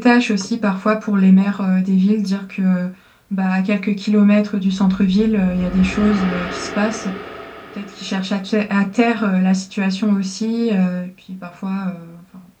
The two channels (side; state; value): both; identical; correlation 1.00